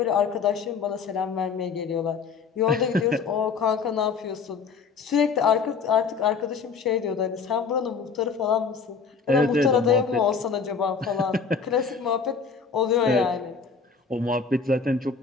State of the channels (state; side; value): quieter; right; 5.4 dB